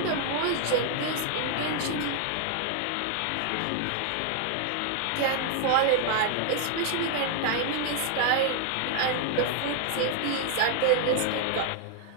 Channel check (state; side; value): different; both; correlation 0.00